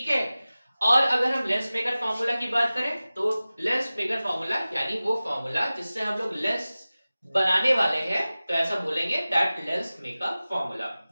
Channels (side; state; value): both; inverted; correlation -0.97